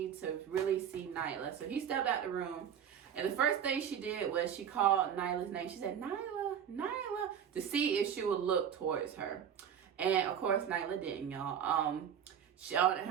to really see Nyla. So he stepped out the room. And the first thing she did was she called Nyla's name. She said, Nyla, Nyla, to see if she would look towards her. And of course, Nyla didn't, y'all. On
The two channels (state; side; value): quieter; left; 8.6 dB